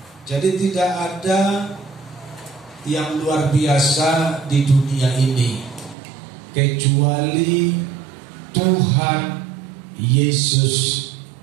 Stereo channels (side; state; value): left; drops out; at 6.0 s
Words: Jadi tidak ada yang luar biasa di dunia ini kecuali Tuhan Yesus